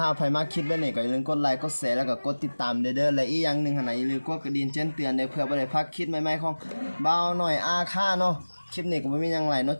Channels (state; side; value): inverted; both; correlation -1.00